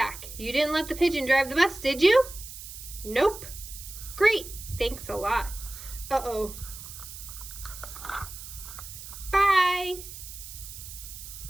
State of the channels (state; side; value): noise; right; hiss, 12 dB below the sound